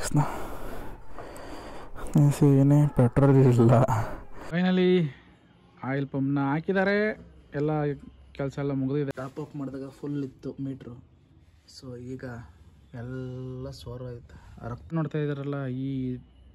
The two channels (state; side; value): identical; both; correlation 1.00